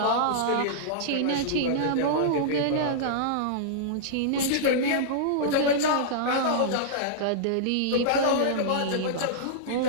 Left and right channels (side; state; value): both; different; correlation -0.02